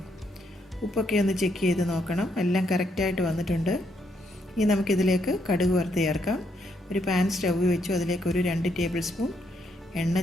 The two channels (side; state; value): both; normal; correlation 0.75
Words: ഉപ്പൊക്കെ ഒന്ന് ചെക്ക് ചെയ്ത് നോക്കണം. എല്ലാം കറക്റ്റായിട്ട് വന്നിട്ടുണ്ട്. ഇനി നമുക്കിതിലേക്ക് കടുക് വറുത്ത് ചേർക്കാം. ഒരു പാൻ സ്റ്റൗ വെച്ചു. അതിലേക്ക് ഒരു 2 ടേബിൾ സ്പൂൺ എണ്ണ